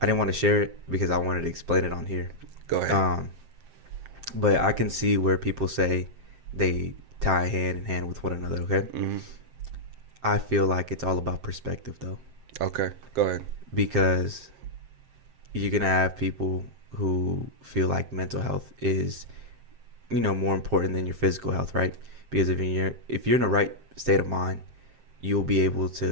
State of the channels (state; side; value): late; left; 7.6 ms